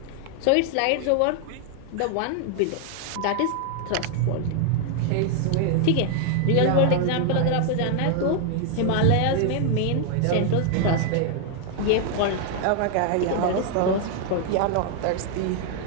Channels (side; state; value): both; different; correlation 0.00